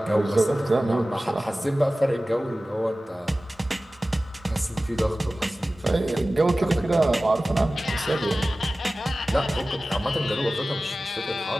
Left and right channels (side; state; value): both; normal; correlation 0.96